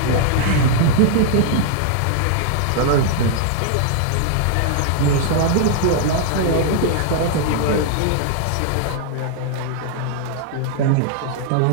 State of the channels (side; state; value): both; different; correlation 0.00